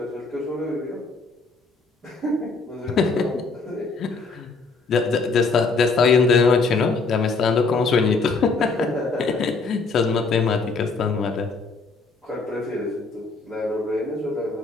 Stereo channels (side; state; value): right; quieter; 4.1 dB